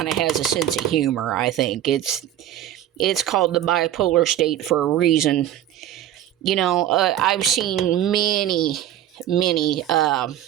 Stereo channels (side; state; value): left; quieter; 11.7 dB